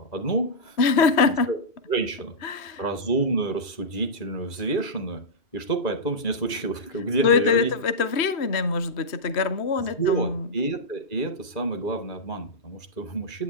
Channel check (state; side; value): late; right; 2.5 ms